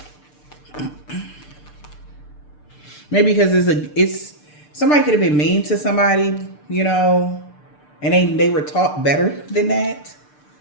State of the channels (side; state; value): right; late; 6.7 ms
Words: Maybe because it's somebody could have been mean to somebody, you know, and they were taught better than that.